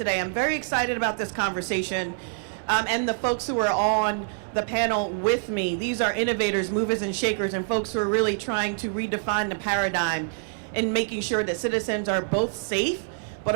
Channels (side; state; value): left; silent; digital silence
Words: I'm very excited about this conversation and the folks who are on the panel with me. These are innovators, movers and shakers, and folks who are really trying to redefine the paradigm in making sure that citizens are both safe, but